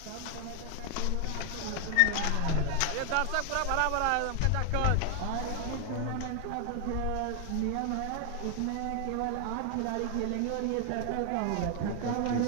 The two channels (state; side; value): different; both; correlation 0.00